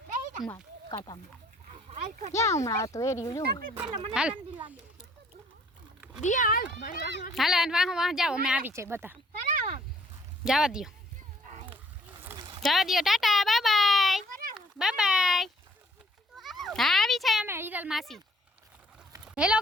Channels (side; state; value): both; normal; correlation 0.60